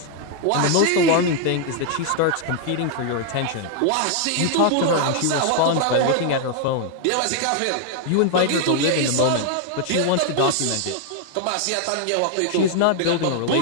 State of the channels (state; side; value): different; both; correlation 0.00